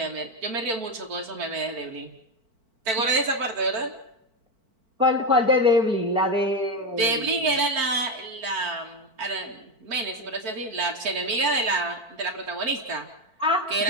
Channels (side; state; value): left; late; 4.5 ms